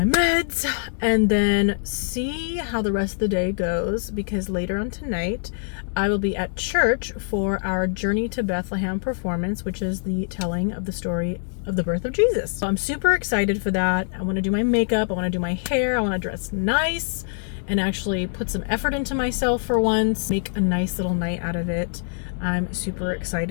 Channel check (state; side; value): silent; right; digital silence